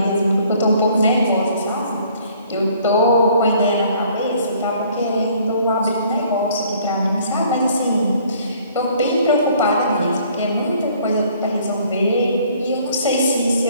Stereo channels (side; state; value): both; inverted; correlation -0.59